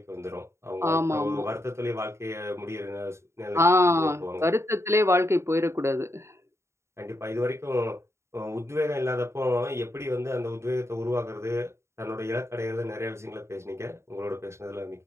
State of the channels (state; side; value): late; left; 0.13 ms